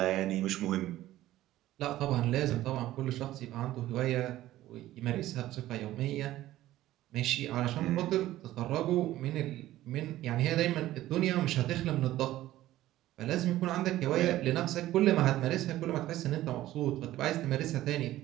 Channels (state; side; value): quieter; left; 14.9 dB